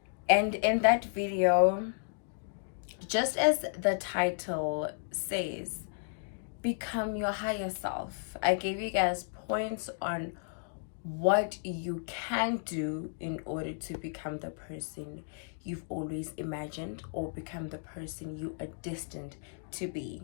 And in that video, just as the title says, become your higher self, I gave you guys points on what you can do in order to become the person you've always imagined or become the person you are destined to be.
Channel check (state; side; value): silent; right; digital silence